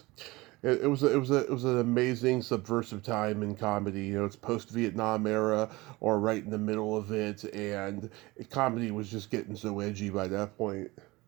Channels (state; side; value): quieter; left; 21.6 dB